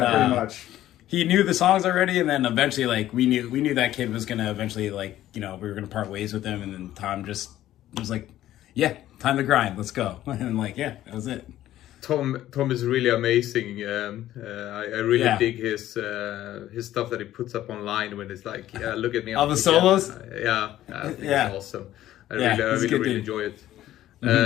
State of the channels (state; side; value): quieter; right; 13.5 dB